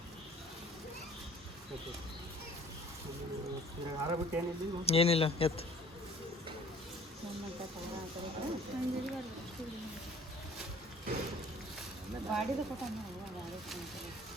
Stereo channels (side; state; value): both; normal; correlation 0.51